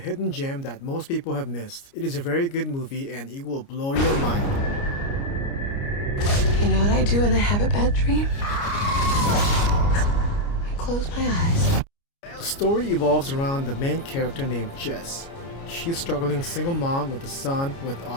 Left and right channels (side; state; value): right; late; 29 ms